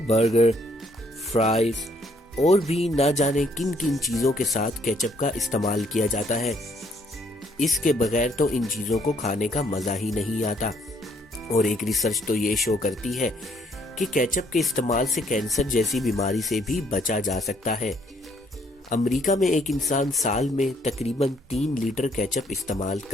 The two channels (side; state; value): both; normal; correlation 0.67